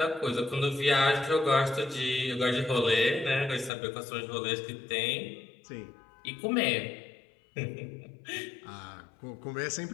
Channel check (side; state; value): right; drops out; at 3.7 s